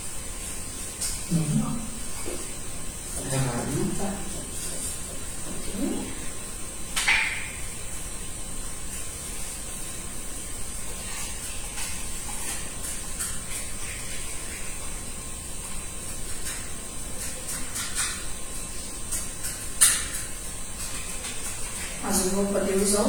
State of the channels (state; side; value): identical; both; correlation 1.00